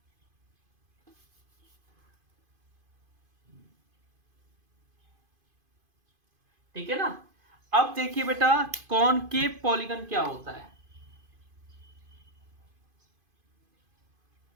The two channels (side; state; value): left; late; 2.5 ms